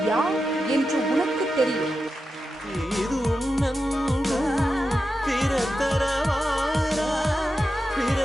யார் என்று உனக்கு தெரியும்.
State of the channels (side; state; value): both; normal; correlation 0.90